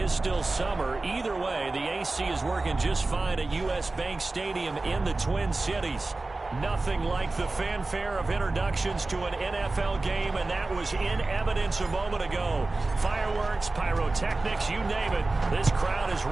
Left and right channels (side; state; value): left; quieter; 3.2 dB